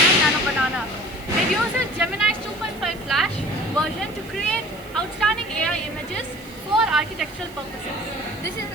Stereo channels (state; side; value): noise; right; hiss, 23 dB below the sound